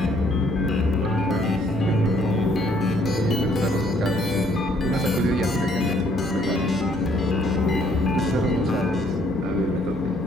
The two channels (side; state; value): both; normal; correlation 0.65